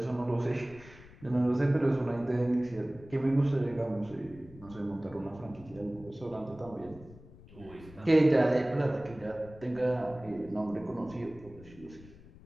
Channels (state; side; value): noise; left; rumble, 20 dB below the sound